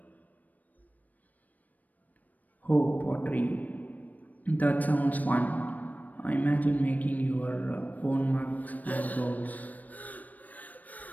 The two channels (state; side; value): late; right; 0.079 ms